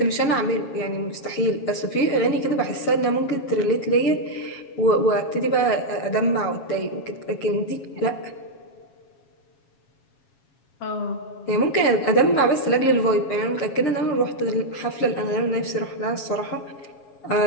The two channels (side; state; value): right; late; 7.3 ms